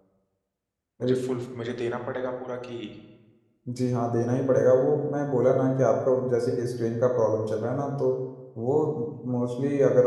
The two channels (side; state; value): both; identical; correlation 1.00